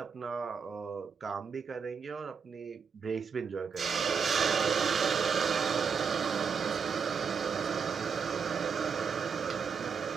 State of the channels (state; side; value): quieter; left; 6.2 dB